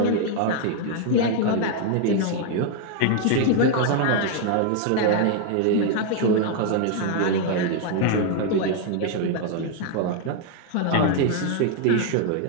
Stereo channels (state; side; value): different; both; correlation 0.00